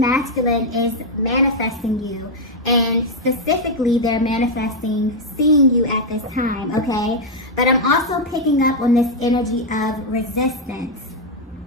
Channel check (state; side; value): normal; both; correlation 0.00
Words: is manifesting you. And specifically, they're manifesting seeing you at this time, okay? But I'm also picking up on this energy of resistance.